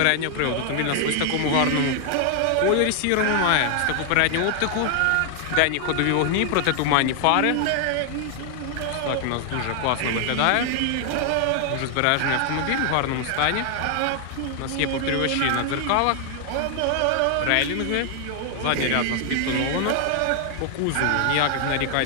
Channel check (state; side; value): different; both; correlation 0.00